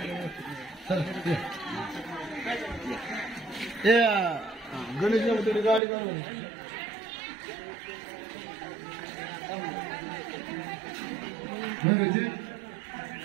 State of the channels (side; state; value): left; drops out; at 5.8 s